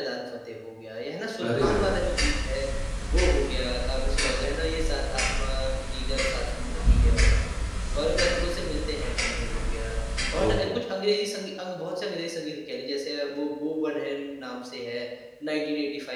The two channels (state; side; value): identical; both; correlation 1.00